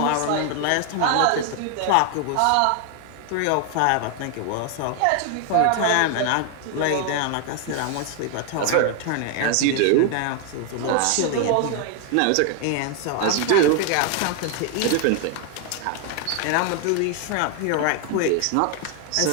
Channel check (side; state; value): both; different; correlation 0.00